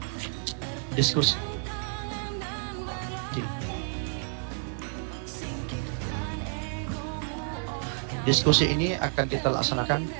diskusi. Diskusi ini akan kita laksanakan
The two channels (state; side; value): silent; left; 56 dB below the other